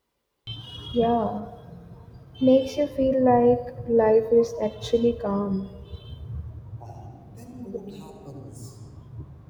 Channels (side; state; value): both; identical; correlation 1.00